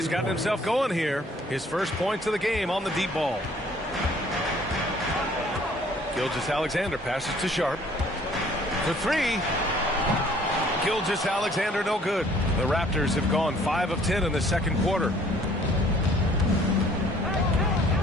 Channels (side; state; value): both; normal; correlation 0.57